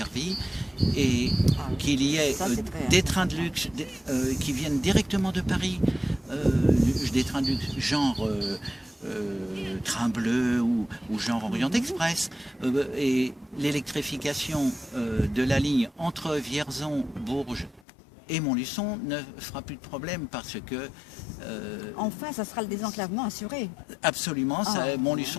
et qu'il y ait des trains de luxe qui viennent directement de Paris, des trains de luxe genre Train Bleu ou genre Orient Express. Et l'électrification de la ligne entre Vierzon, Bourges et Montluçon ne fera plus de problème parce que... Enfin, ça sera le désenclavement assuré. Absolument,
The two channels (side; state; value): right; drops out; at 17.8 s